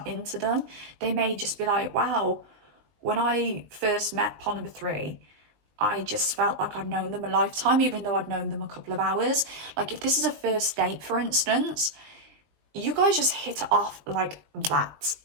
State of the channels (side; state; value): left; late; 19 ms